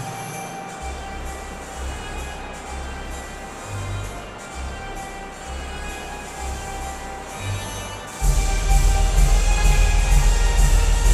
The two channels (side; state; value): both; identical; correlation 1.00